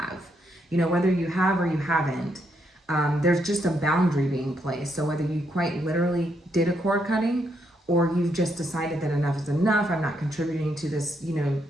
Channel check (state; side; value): normal; both; correlation 0.77